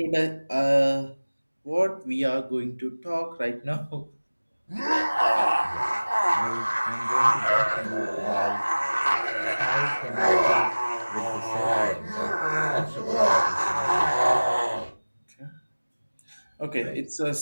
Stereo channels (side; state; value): both; inverted; correlation -1.00